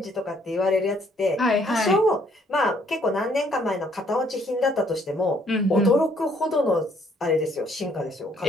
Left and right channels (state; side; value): normal; both; correlation 0.65